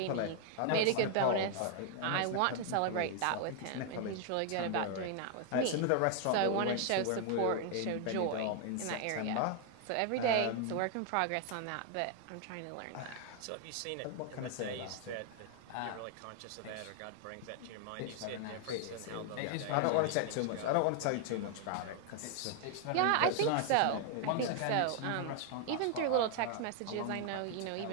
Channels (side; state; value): both; different; correlation 0.00